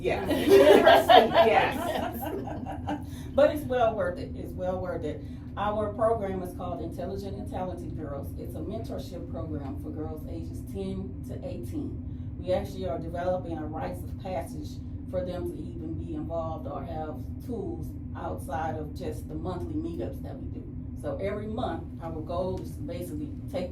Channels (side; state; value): both; identical; correlation 1.00